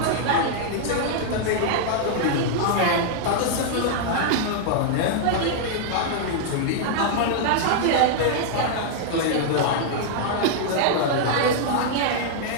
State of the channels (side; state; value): both; different; correlation -0.01